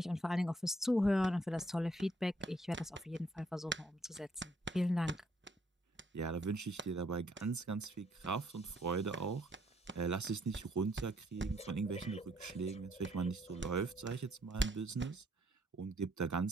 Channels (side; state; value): both; normal; correlation 0.68